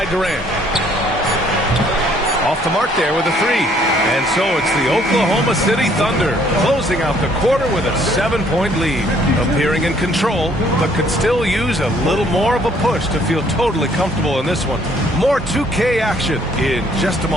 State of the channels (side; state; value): both; normal; correlation 0.63